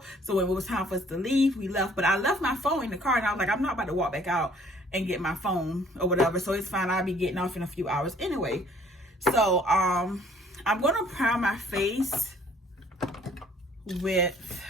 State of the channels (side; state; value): both; normal; correlation 0.58